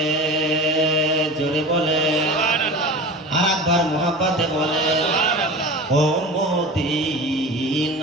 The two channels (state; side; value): normal; both; correlation 0.33